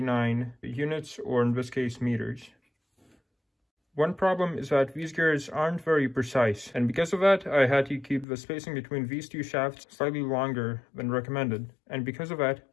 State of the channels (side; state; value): right; drops out; at 8.2 s